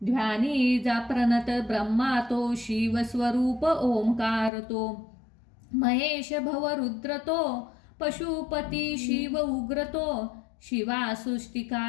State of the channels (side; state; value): right; drops out; at 4.5 s